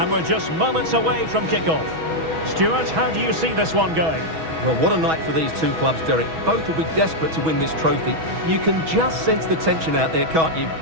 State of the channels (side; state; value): left; late; 6.2 ms